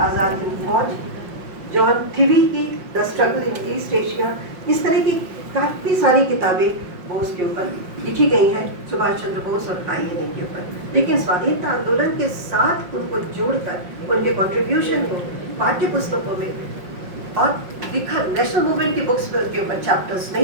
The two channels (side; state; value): left; late; 5.5 ms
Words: हिंद फौज, जॉन थिवी की the struggle in East Asia, इस तरह की काफ़ी सारी किताबें बोस के ऊपर लिखी गई हैं, सुभाष चंद्र बोस और INA के ऊपर। लेकिन स्वाधीनता आंदोलन के साथ उनको जोड़कर उनके कंट्रीब्यूशन को पाठ्य पुस्तकों में और लिखा नेशनल मूवमेंट की बुक्स पर उनके ऊपर चैप्टर्स